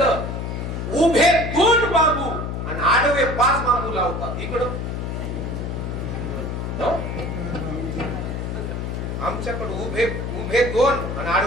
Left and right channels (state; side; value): noise; left; hum, 4 dB below the sound